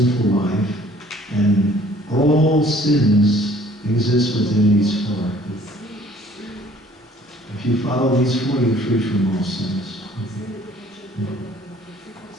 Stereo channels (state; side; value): normal; both; correlation 0.56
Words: life, and all sins exist within these four. If you follow these four, you're free from all sins.